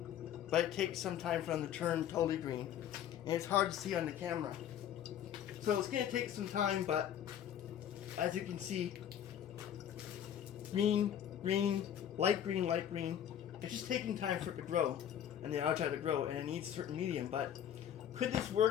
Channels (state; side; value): quieter; right; 10.0 dB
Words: but it takes some time for them to turn totally green. And it's hard to see on the camera. So it's going to take some time, but as you can see, green, light green, light green. It's just taking time for it to grow, and the algae to grow, and it needs a certain medium. But could this